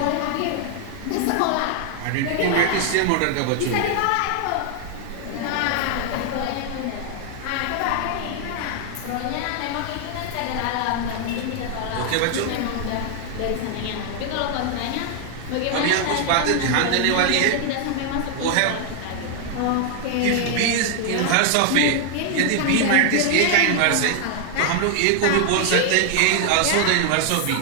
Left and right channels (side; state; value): both; different; correlation 0.00